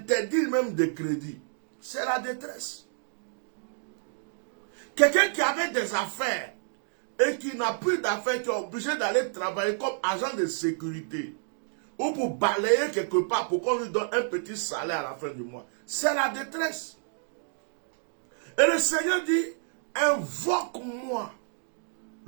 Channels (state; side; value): silent; left; digital silence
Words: même de crédit. C'est la détresse. Quelqu'un qui avait des affaires et qui n'a plus d'affaires, qui est obligé d'aller travailler comme agent de sécurité ou pour balayer quelque part pour qu'on lui donne un petit salaire à la fin du mois. C'est la détresse. Et le Seigneur dit, invoque-moi